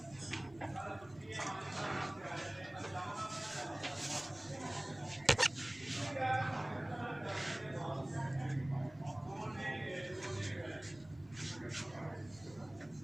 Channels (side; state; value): right; noise; rumble, 23 dB below the sound